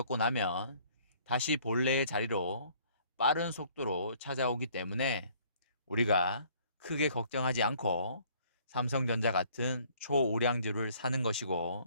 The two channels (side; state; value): both; inverted; correlation -0.59